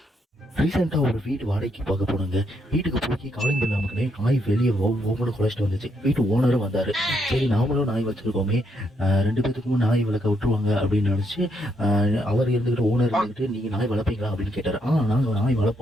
ரீசெண்டாக ஒரு வீடு வாடகைக்கு பார்க்க போனாங்க. வீட்டுக்கு போய் காலிங் பில் நமக்குனே நாய் வெளியே ஒவ்வொன்று குறைச்சிட்டு வந்துச்சு. வீட்டு ஓனரும் வந்தார். சரி, நாமளும் நாய் வச்சுருக்கோமே, 2 பேத்துக்கும் நாய் வளர்க்க விட்டுருவாங்க அப்படின்னு நினச்சி அவர் இருந்துக்கிட்டு ஓனர் இருந்துக்கிட்டு நீங்கள் நாய் வளர்ப்பீங்களா அப்படின்னு கேட்டார். நாங்கள் நாய்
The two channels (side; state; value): both; normal; correlation 0.76